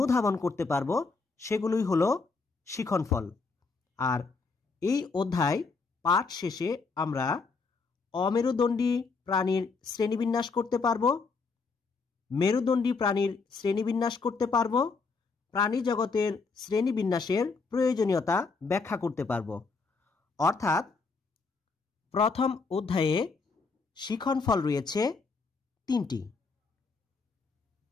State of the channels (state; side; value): quieter; right; 4.4 dB